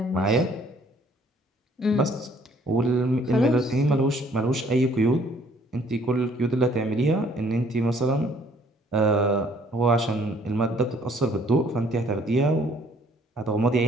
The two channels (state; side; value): normal; both; correlation 0.61